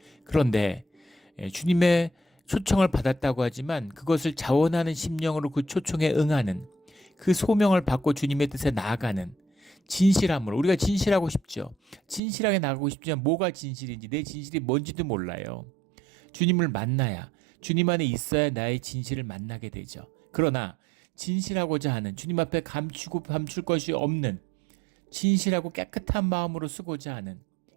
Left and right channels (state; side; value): drops out; left; at 12.2 s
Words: 그런데 주님의 초청을 받았다고 하지만 그것을 자원하는 심령으로 그 초청에 응하는, 그 소명을 받고 주님의 뜻에 나아가는 진실함으로, 우리가 진실하고 싶죠. 진실하게 나가고 싶지만 뭐가 진실인지, 내 진실이 뭔지도 몰라요. 주님을 만나야, 주님 안에 있어야 나의 진실을 만나게 되죠. 그러나 진실하고자 하는, 주님 앞에 감출 것이 없는, 진실하고 깨끗한 마음으로 쓰고자 하는,